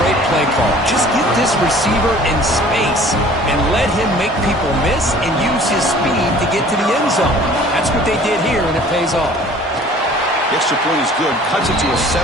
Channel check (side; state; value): both; normal; correlation 0.50